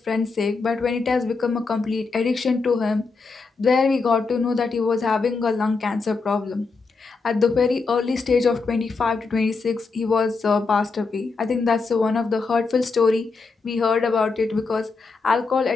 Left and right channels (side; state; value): right; quieter; 4.3 dB